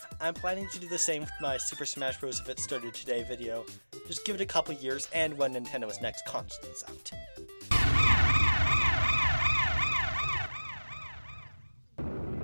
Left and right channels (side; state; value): both; inverted; correlation -1.00